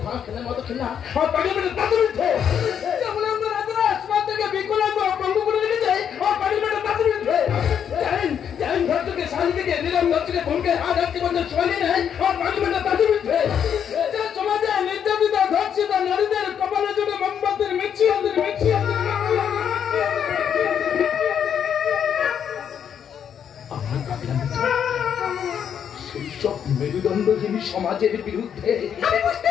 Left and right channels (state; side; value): quieter; right; 8.4 dB